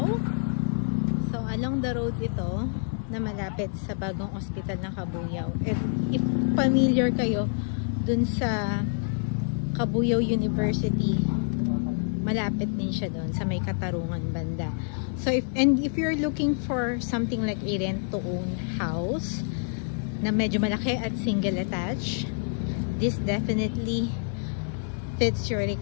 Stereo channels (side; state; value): right; silent; 56 dB below the other